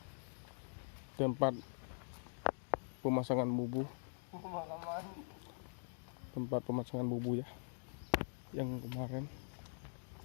tempat pemasangan bubu, tempat pemasangan bubu ya, yang kemarin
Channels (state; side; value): silent; right; digital silence